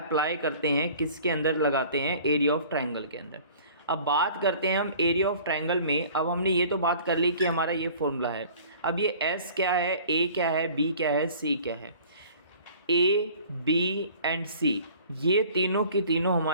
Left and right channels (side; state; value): both; inverted; correlation -0.48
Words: करते हैं, किसके अंदर लगाते हैं, एरिया ऑफ ट्रायंगल के अंदर। अब बात करते हैं हम एरिया ऑफ ट्रायंगल में। अब हमने ये तो बात कर ली कि हमारा ये फॉर्मूला है। अब ये एस क्या है, ए क्या है, बी क्या है, सी क्या है। ए बी एंड सी ये तीनों की तीनों